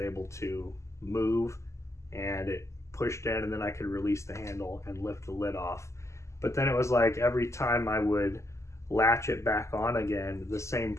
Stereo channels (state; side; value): late; right; 0.14 ms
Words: to move and it pushed in, and then I could release the handle and lift the lid off. But then it was like every time I would latch it back on again, the same